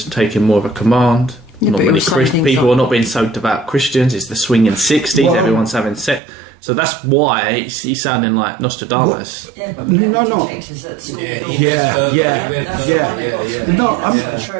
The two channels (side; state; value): left; drops out; at 6.2 s